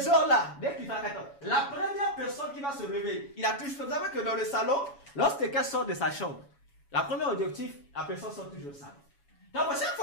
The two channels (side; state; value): right; late; 7.1 ms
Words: heures-là, dès qu'il fait 4 heures, la première personne qui va se réveiller, il a toujours, vous savez que dans le salon, lorsque quelqu'un sort de sa chambre, la première objectif, la personne sort toujours au salon. Donc, chaque